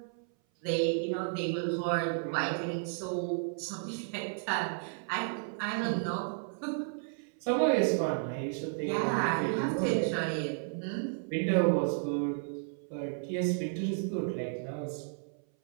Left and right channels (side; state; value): left; silent; 56 dB below the other